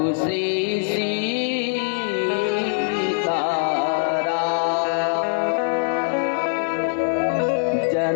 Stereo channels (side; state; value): right; silent; digital silence